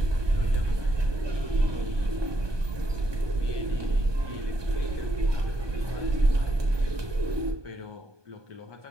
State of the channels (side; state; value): left; late; 1.2 ms